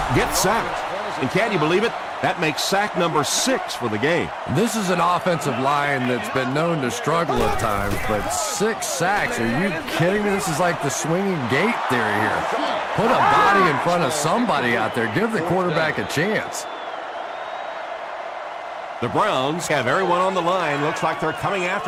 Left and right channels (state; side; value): identical; both; correlation 1.00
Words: gets sacked. And can you believe it? That makes sack number 6 for the game. This is an offensive line that's been known to struggle at times, but 6 sacks, are you kidding me? This is like the swinging gate theory here. Put a body in front of somebody out there. Give the quarterback a chance. The Browns have everyone on the line. Looks like they're coming